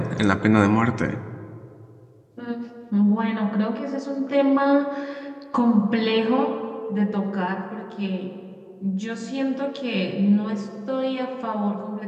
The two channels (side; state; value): both; identical; correlation 1.00